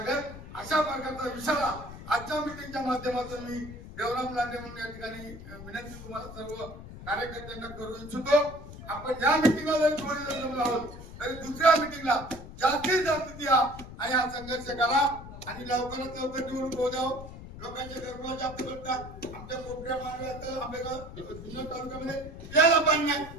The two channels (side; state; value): left; noise; rumble, 13 dB below the sound